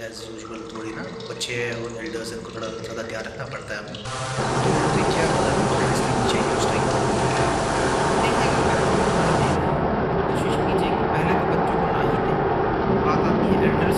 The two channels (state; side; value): identical; both; correlation 1.00